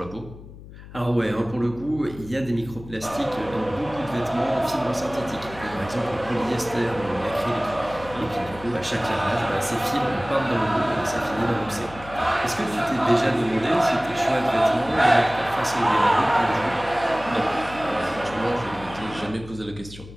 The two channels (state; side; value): noise; left; hum, 16 dB below the sound